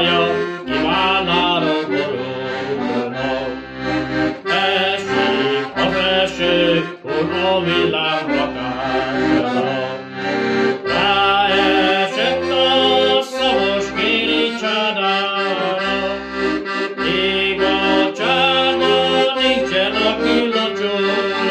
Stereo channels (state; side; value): identical; both; correlation 1.00